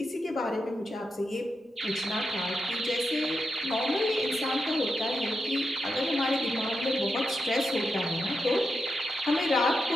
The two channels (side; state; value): both; normal; correlation 0.87